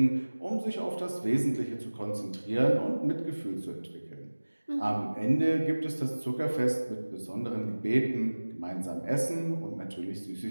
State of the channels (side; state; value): both; inverted; correlation -1.00